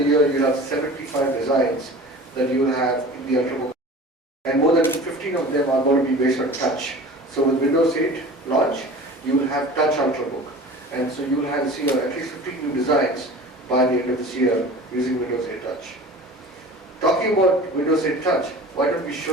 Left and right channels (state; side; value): normal; both; correlation 0.39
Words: year, you have 75 designs that you will have in the Ultrabook. And more than 15 of them are going to be based on touch. So with Windows 8 launch, you will have touch Ultrabook. And so you will have see at least 15 new designs by the end of this year using Windows 8 Touch. Talking about Windows 8 Touch, why don't we